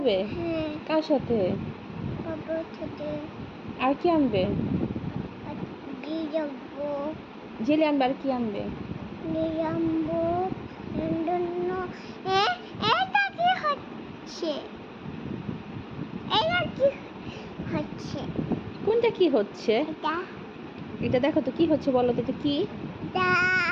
হ্যাঁ, কার সাথে? বাবার সাথে। আর কি আনবে? দিয়ে যাবো, জেলি আনবে আর কি আনবে? দিয়ে যাবো। এটা কি হচ্ছে? এটা কি হচ্ছে? কোনটা কি হচ্ছে? এটা এটা দেখো তো কি হচ্ছে, বলো তো এটা কি? এটা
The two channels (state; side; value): identical; both; correlation 1.00